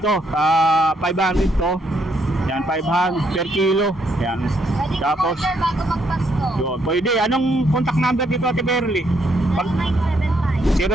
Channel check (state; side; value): normal; both; correlation 0.73